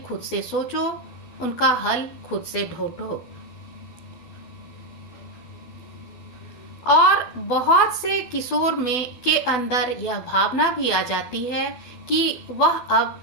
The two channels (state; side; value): late; right; 12 ms